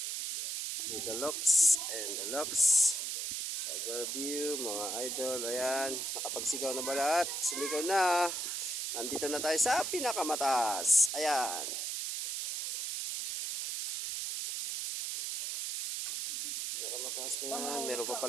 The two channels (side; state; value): right; noise; hiss, 3 dB below the sound